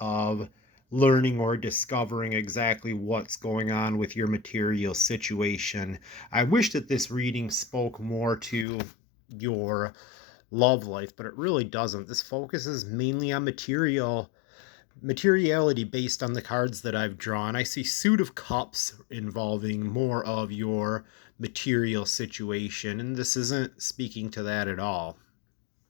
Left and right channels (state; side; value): drops out; right; at 8.7 s